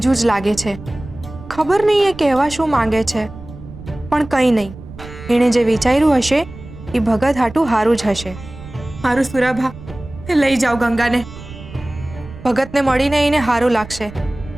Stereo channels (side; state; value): right; noise; rumble, 15 dB below the sound